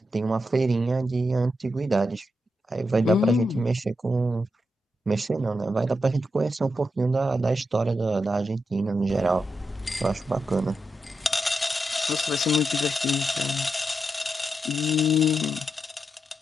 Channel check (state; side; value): normal; both; correlation 0.86